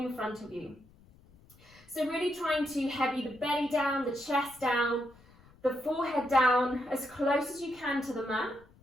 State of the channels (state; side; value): noise; left; rumble, 26 dB below the sound